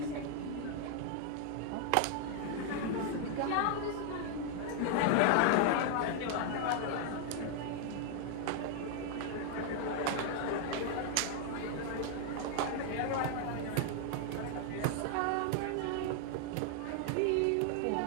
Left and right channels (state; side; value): different; both; correlation 0.00